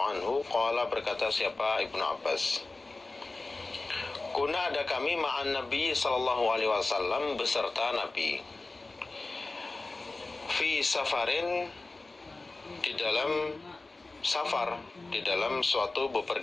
anhu qala, berkata siapa Ibnu Abbas, kuna, ada kami ma'an Nabi sallallahu alaihi wasallam, beserta Nabi, fi safarin, di dalam safar, di dalam suatu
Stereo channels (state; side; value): quieter; right; 3.3 dB